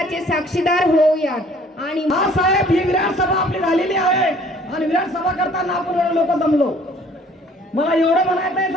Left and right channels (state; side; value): normal; both; correlation 0.55